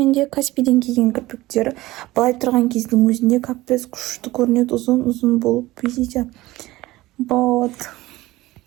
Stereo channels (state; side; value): quieter; left; 18.2 dB